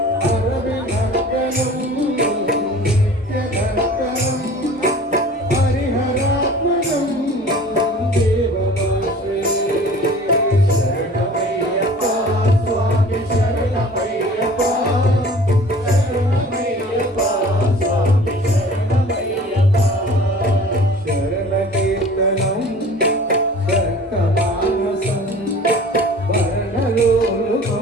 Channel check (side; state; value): both; normal; correlation 0.45